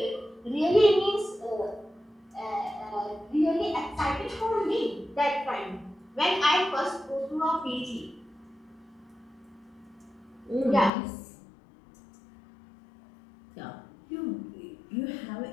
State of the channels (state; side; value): drops out; right; at 10.9 s